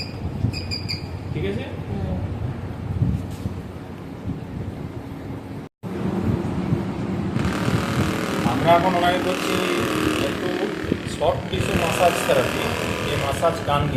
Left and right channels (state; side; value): identical; both; correlation 1.00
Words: ঠিক আছে। আমরা এখন ওনাকে করছি একটু সফট টিস্যু মাসাজ থেরাপি, এই মাসাজ গান